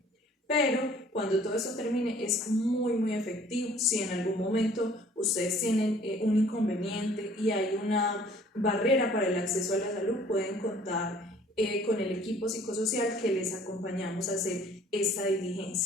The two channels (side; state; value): both; normal; correlation 0.55